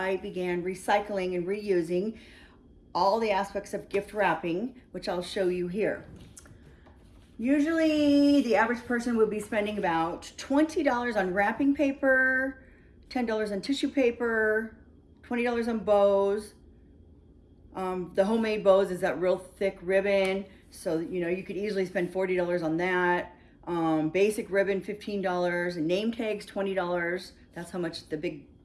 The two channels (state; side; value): identical; both; correlation 1.00